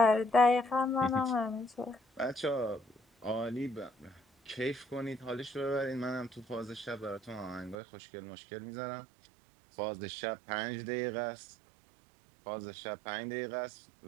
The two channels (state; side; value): drops out; left; at 7.8 s